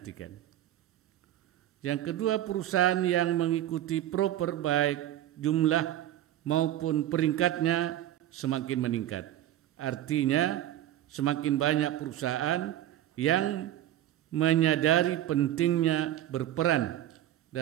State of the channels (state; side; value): quieter; left; 12.8 dB